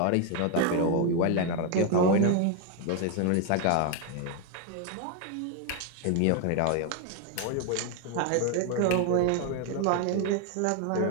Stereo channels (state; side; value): different; both; correlation 0.01